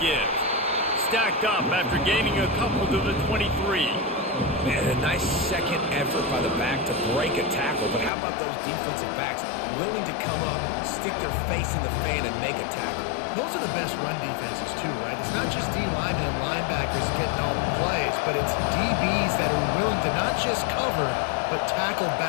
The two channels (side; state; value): right; drops out; at 8.1 s